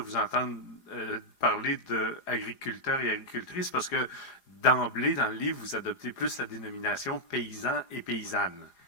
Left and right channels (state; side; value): late; right; 4.9 ms